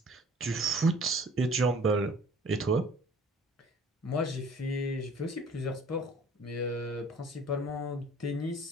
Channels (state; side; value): normal; both; correlation 0.50